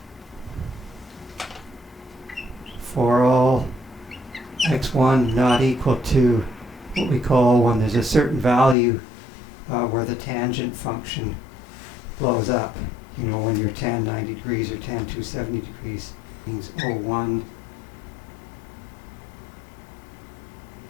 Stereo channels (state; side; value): drops out; right; at 8.8 s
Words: for all x1 not equal to what we call, when there's a certain value where the tangent function blows up. You know, when you're tan 90 degrees or tan 270 degrees, means O1,